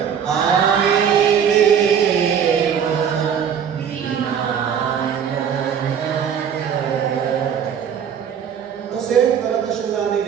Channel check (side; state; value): left; quieter; 8.0 dB